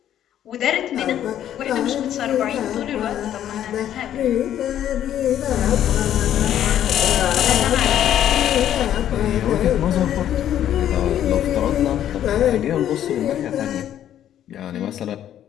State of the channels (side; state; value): right; quieter; 11.0 dB